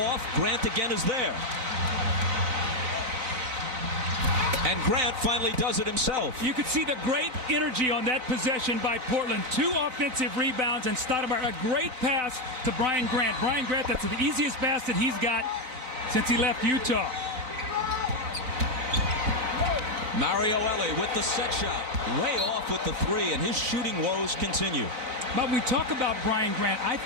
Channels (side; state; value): left; late; 4.4 ms